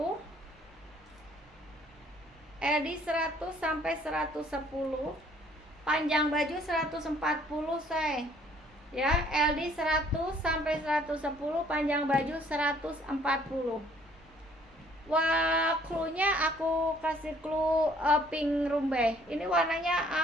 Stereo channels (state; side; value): normal; both; correlation 0.60